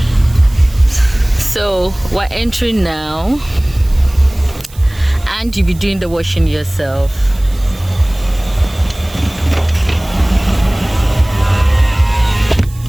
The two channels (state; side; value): noise; right; hiss, 22 dB below the sound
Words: So we're entering now and you'll be doing the washing yourself.